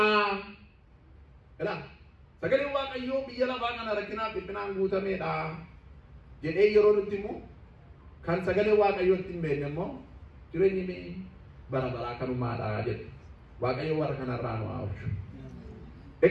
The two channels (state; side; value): identical; both; correlation 1.00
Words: Sagaleen Waaqayyoo biyya lafaa kana rakkinaaf dhiphinaan guutameedha jedhee yeroo nutti himu kan sagalee Waaqayyootti hin beekne immoo jireenyi bara baraa kanumaadha jedhu. Waaqayyo warra kanarraa nu haa oolchu.